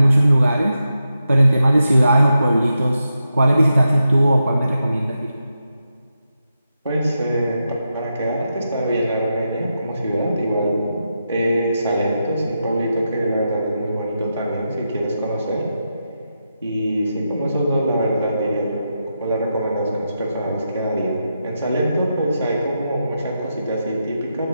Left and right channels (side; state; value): both; inverted; correlation -0.87